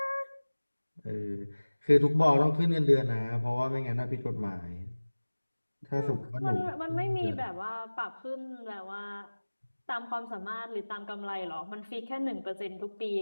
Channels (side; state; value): both; inverted; correlation -1.00